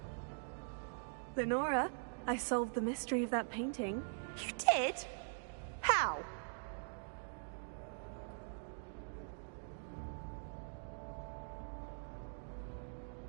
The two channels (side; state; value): left; silent; digital silence